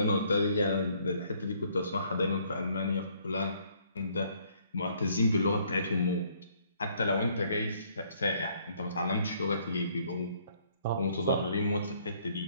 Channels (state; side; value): inverted; both; correlation -0.64